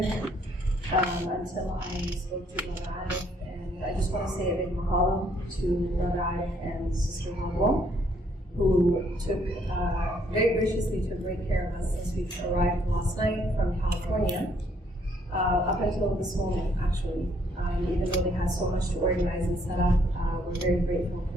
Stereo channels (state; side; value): normal; both; correlation 0.67